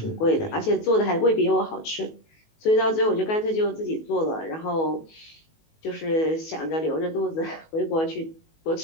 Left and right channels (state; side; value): late; right; 19 ms